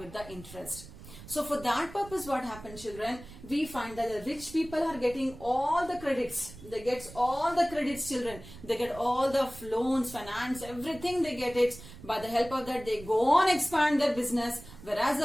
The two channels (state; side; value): noise; right; rumble, 17 dB below the sound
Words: the interest. So for that purpose, what happens, children? We find that the rich people are getting all the credits. They get all the credits, children. They get all the loans, finance, everything they get it. By the help of that, they go on expand their business. Whereas